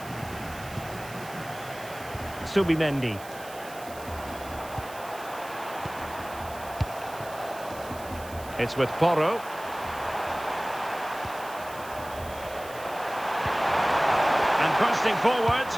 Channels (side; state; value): right; noise; hiss, 17 dB below the sound